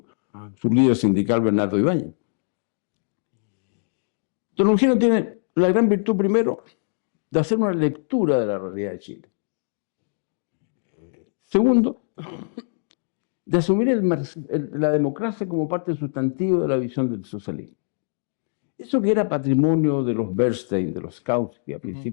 su líder sindical Bernardo Ibáñez. Don Eugenio tiene la gran virtud, primero, de hacer una lectura de la realidad de Chile. Segundo, de asumir la democracia como parte sustantiva de la visión del socialismo. Eso que era patrimonio de los Bernstein, de los Kautsky, a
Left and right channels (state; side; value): silent; right; digital silence